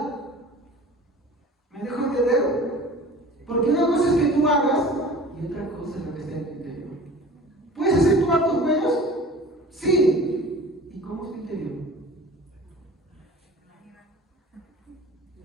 ¿Me dejo entender? Porque una cosa es que tú hagas y otra cosa es lo que está en tu interior. ¿Puedes hacer tus actos buenos? Sí. ¿Y cómo es tu interior?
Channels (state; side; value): normal; both; correlation 0.42